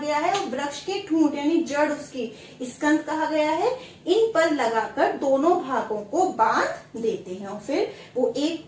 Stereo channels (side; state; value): both; identical; correlation 1.00